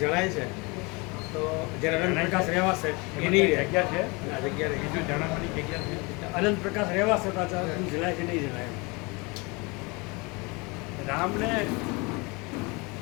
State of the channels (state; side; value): quieter; right; 27.4 dB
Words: છે તો જ્યારે અનંત પ્રકાશ રહેવાશે એની જગ્યા છે, આ જગ્યા રહી. બીજું જણાવવાની જગ્યા છે. અનંત પ્રકાશ રહેવાશે પાછા જણાય છે નહીં જણાય. રામને